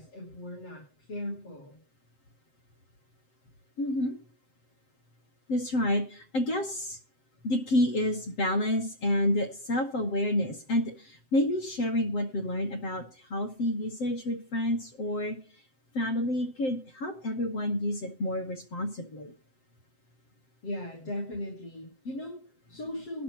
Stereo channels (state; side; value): late; right; 7.7 ms